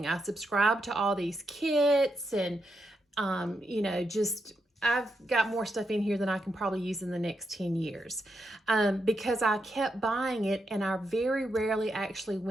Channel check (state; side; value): normal; both; correlation 0.83